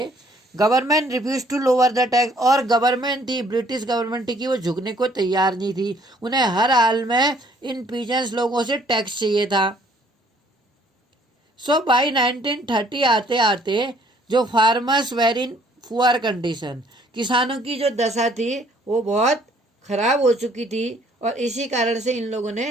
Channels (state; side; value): normal; both; correlation 0.61